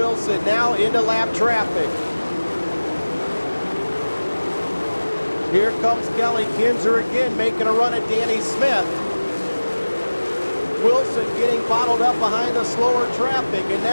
now into lap traffic. Here comes Kelly Kinzer again, making a run at Danny Smith. Wilson getting bottled up behind the slower traffic, and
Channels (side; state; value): both; inverted; correlation -1.00